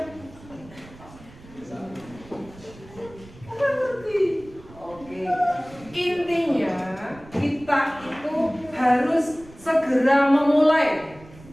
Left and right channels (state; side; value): noise; right; rumble, 21 dB below the sound